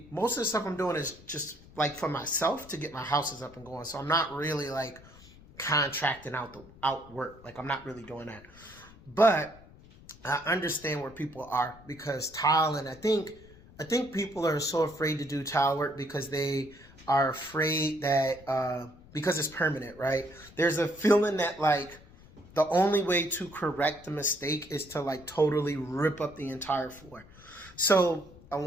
most of the stuff I'm doing is just like for myself to get my houses up and going. So I'm not really like contracting out work. Like I'm not really doing that. But I understand where people are because tile, and I think people are so afraid to do tile work because they are afraid that because it's permanent, right? There's a feeling that like the only way to correct the mistake is to like totally rip up the entire floor. So I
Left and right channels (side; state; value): left; noise; rumble, 22 dB below the sound